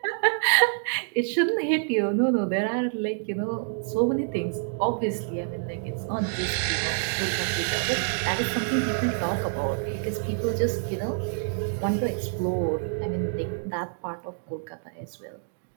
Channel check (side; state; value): left; silent; digital silence